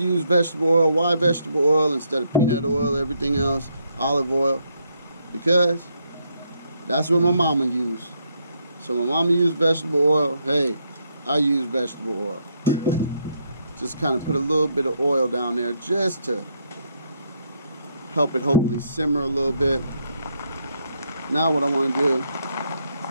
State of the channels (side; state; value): both; inverted; correlation -0.75